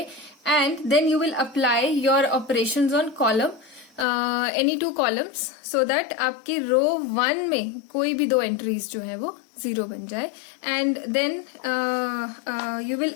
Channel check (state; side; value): drops out; right; at 4.0 s